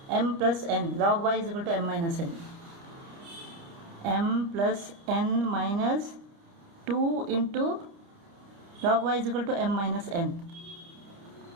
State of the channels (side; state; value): left; late; 30 ms